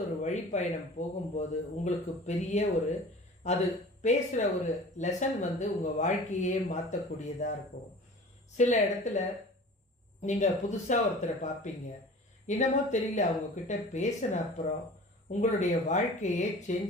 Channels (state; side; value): normal; both; correlation 0.41